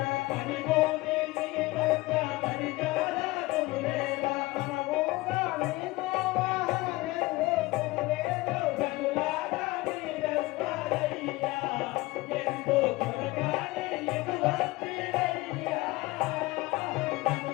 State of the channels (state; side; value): quieter; right; 20.6 dB